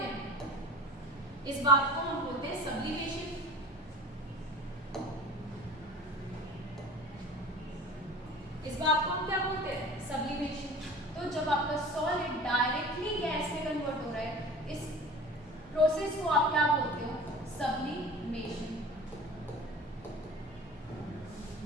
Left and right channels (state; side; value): normal; both; correlation 0.39